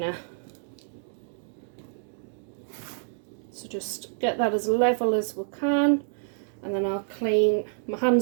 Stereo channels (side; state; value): left; silent; digital silence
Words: So just get that as level as we can, and then I'll clean, my